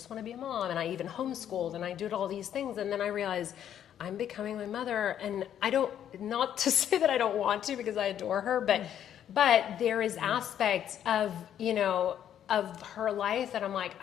want to be a mom, and I even homeschooled, and I did all these things. And then I realized I'm becoming my mother, and not to say that I don't want to, because I adore her, but there is aspects of, you know, of her life that I'm like,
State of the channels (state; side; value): quieter; right; 10.0 dB